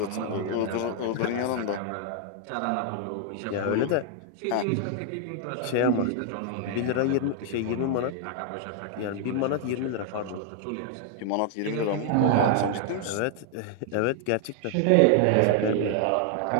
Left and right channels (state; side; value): different; both; correlation 0.00